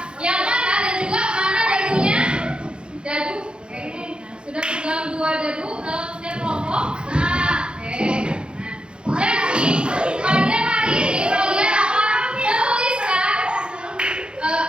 yang mana dan juga mana dadunya? Dadu. Oke. Nah, sudah pegang 2 dadu dalam setiap kelompok. Oke. Nah, jadi pada hari ini kalian akan menuliskan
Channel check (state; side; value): late; left; 0.053 ms